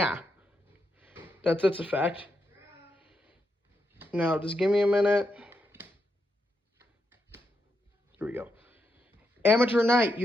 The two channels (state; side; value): normal; both; correlation 0.83